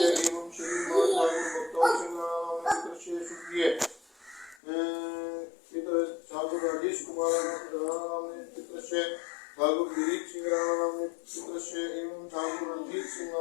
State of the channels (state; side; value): drops out; right; at 4.6 s